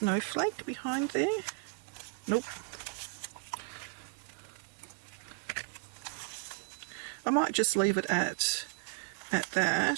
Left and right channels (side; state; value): left; quieter; 40.0 dB